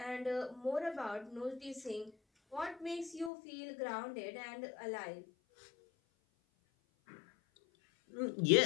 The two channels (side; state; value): right; drops out; at 3.3 s